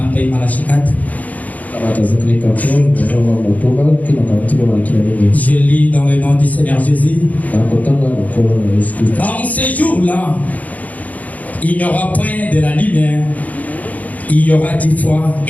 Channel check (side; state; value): right; late; 0.075 ms